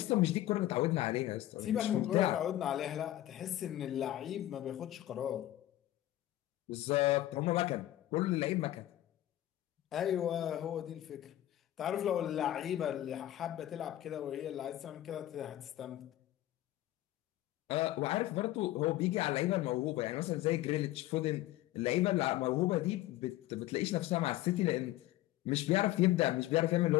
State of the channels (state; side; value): quieter; right; 14.8 dB